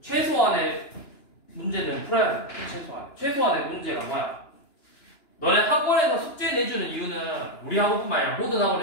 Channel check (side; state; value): right; late; 2.9 ms